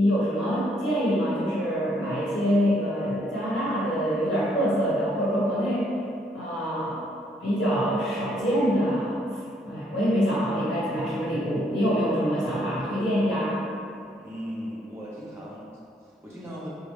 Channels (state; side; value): normal; both; correlation 0.70